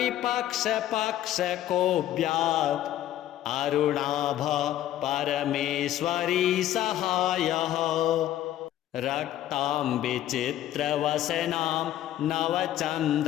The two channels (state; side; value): quieter; right; 12.7 dB